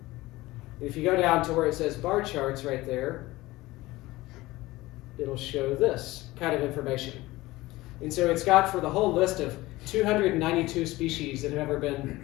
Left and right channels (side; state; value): right; quieter; 19.0 dB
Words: If you go down to where it says bar charts right there, it'll show this kind of information. And so it's got for the whole list of 292 species that have ever been